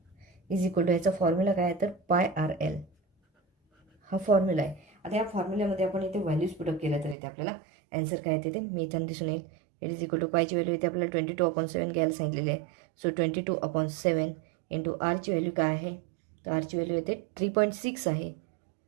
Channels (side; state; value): left; drops out; at 7.2 s